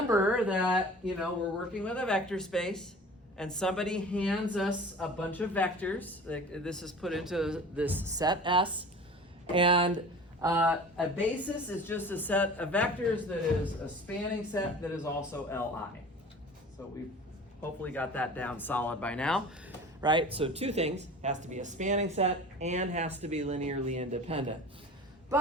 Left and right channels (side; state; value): both; normal; correlation 0.40